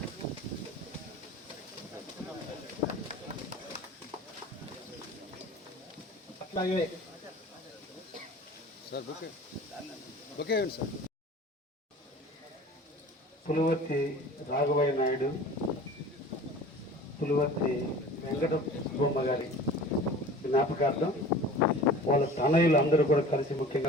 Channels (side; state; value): both; normal; correlation 0.42